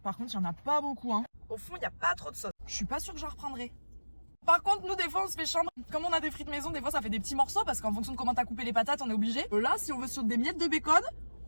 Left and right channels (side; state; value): both; inverted; correlation -1.00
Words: Par contre, il y en a pas beaucoup, hein. Au fond, il n'y a pas trop de sauce. Je suis pas sûre que j'en reprendrai. Par contre, nous, des fois, on se fait chambre. Comme on a des frites maison, des fois, ça fait des petits morceaux parce qu'en fonction de comment t'as coupé les patates, on est obligé. Là, si on veut sur des miettes de bacon,